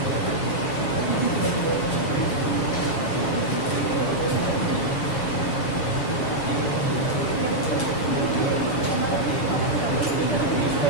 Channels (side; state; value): right; late; 7.5 ms